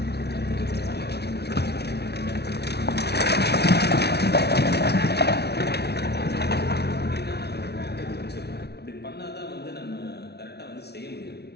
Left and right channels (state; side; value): late; right; 0.49 ms